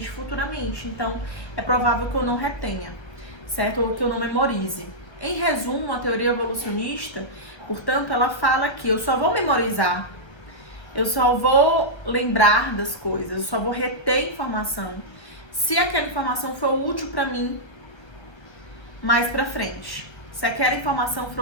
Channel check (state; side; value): late; right; 1.3 ms